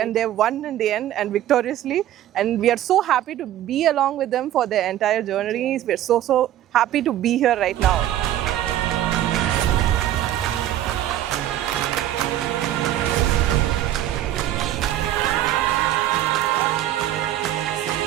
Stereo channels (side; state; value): left; quieter; 12.6 dB